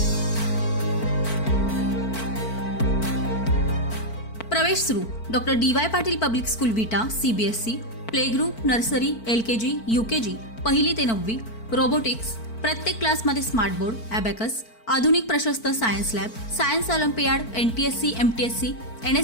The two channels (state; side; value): late; right; 4.5 ms